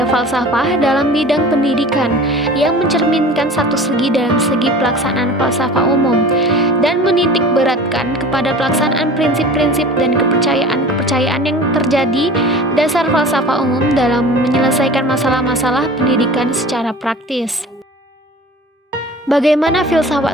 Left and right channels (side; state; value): both; normal; correlation 0.40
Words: falsafah dalam bidang pendidikan yang mencerminkan satu segi dalam segi pelaksanaan falsafah umum dan menitik beratkan kepada pelaksanaan prinsip-prinsip dan kepercayaan-kepercayaan yang terjadi dasar falsafah umum dalam menyelesaikan masalah-masalah pendidikan secara praktis. Bagaimana